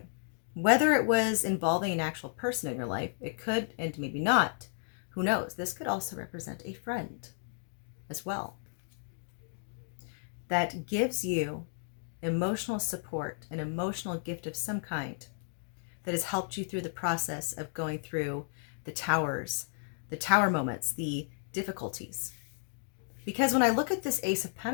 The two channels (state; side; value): silent; right; digital silence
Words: Whether it was involving an actual person in your life, it could, and maybe not. Who knows? This could also represent a friend as well. That gives you emotional support, an emotional gift of some kind that has helped you through the process of going through the towers, the tower moments, the difficulties. Because when I look at this Ace of